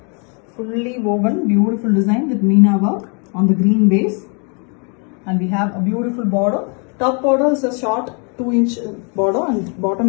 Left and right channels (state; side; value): quieter; right; 36.5 dB